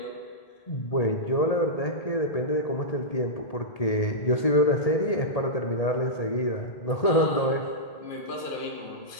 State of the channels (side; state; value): right; late; 1.8 ms